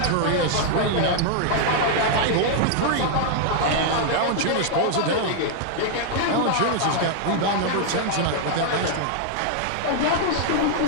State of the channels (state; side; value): different; both; correlation -0.01